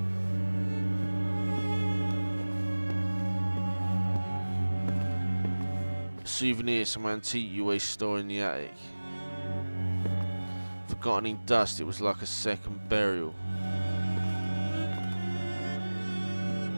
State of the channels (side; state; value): both; inverted; correlation -1.00